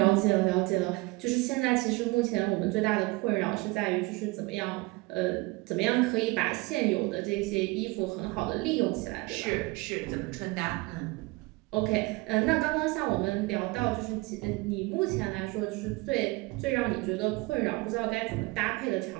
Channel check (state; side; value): quieter; left; 24.0 dB